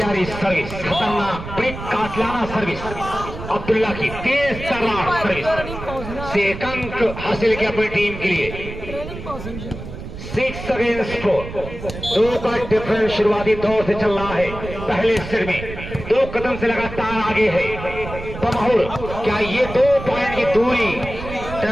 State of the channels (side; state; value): right; noise; rumble, 10 dB below the sound